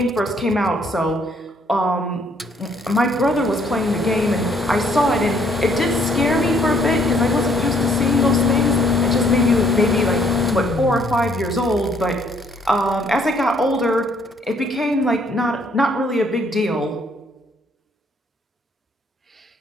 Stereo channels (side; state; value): both; normal; correlation 0.66